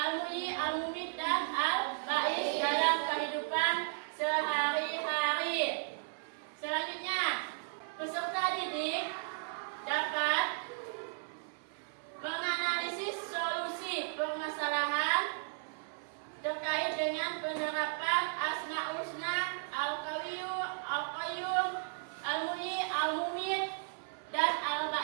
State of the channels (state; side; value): silent; left; 54 dB below the other